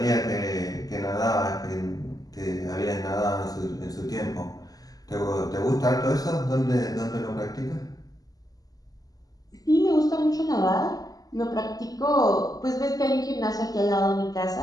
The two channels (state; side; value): late; right; 0.18 ms